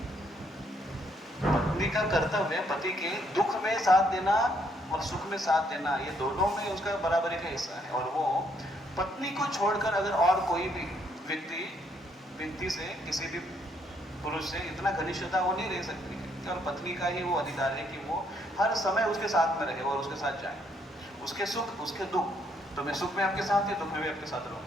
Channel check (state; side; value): normal; both; correlation 0.71